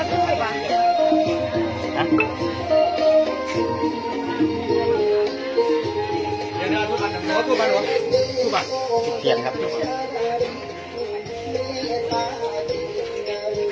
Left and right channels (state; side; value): identical; both; correlation 1.00